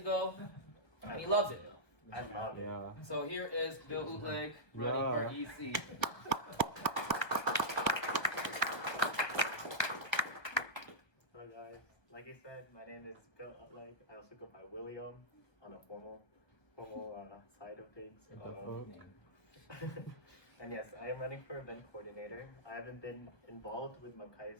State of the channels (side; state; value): right; late; 1.3 ms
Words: and he loves it. I love it. Yeah. So here is Bill Utleg running for EC. Hello guys, like you said, my name is Bill Utleg. I also go by William on a formal side of things. And yes, I am running for event coordinator. I haven't been involved with